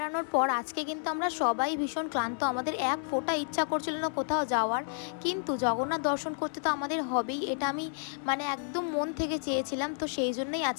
পর আজকে কিন্তু আমরা সবাই ভীষণ ক্লান্ত, আমাদের এক ফোঁটা ইচ্ছা করছিল না কোথাও যাওয়ার, কিন্তু জগন্নাথ দর্শন করতে তো আমাদের হবেই, এটা আমি একদম মন থেকে চেয়েছিলাম। তো সেই জন্যই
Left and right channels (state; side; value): silent; right; 57 dB below the other